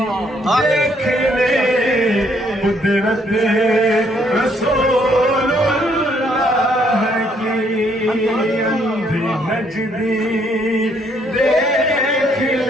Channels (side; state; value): both; normal; correlation 0.69